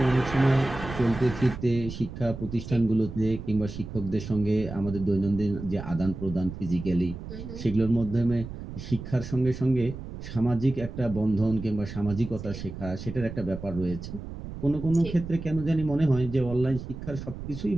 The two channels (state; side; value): noise; right; rumble, 10 dB below the sound